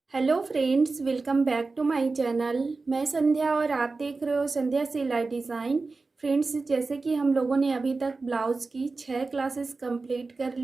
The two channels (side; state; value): left; quieter; 3.8 dB